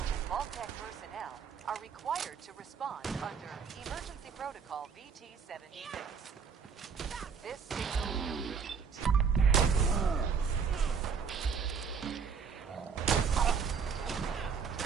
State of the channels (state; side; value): quieter; left; 6.2 dB